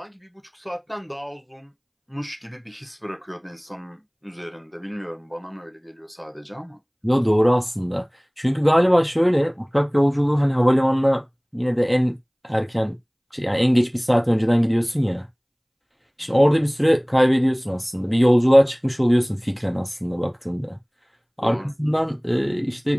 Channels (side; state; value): both; identical; correlation 1.00